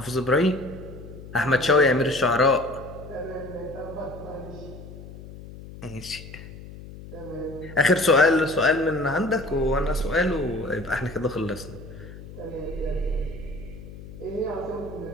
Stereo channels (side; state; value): left; noise; hum, 15 dB below the sound